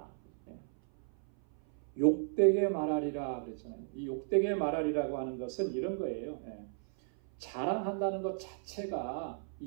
욕되게 말하리라 그랬잖아요. 이 욕되게 말하리라고 하는 것은 이런 거예요. 자랑한다는 것 자체가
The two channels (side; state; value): left; silent; 55 dB below the other